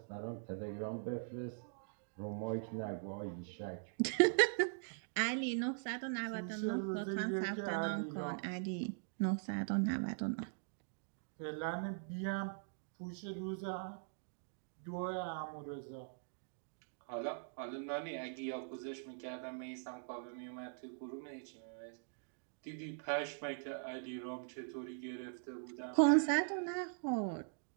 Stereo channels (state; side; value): silent; left; digital silence